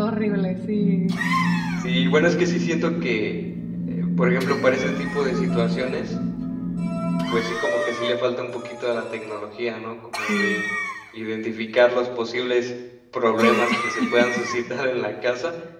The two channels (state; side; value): identical; both; correlation 1.00